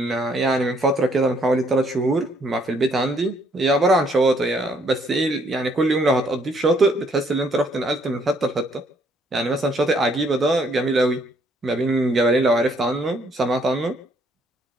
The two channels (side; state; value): both; normal; correlation 0.67